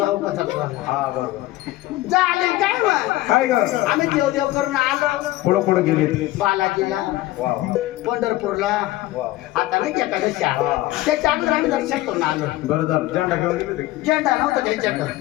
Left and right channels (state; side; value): quieter; right; 17.2 dB